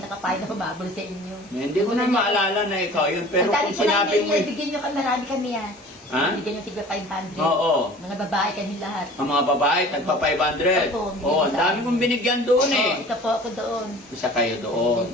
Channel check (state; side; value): normal; both; correlation 0.44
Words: nakapain na humabol sa inyo. Hindi ko na maalala na ikaw yun. Pero Ang dami kung ko na sinabi mo, bigyan nyo kami, marami kami yan. Ha? Bigyan yung tigba 500. Oo. Mga babae kami lahat. Ang mga babae, tagpa 500. Opo, Oo, ang dami kong binigyan doon eh. Oh, isa po ako doon. Isa kayo doon.